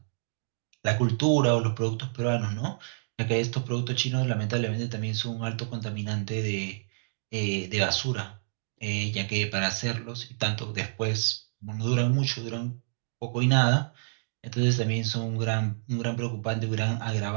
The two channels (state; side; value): silent; left; digital silence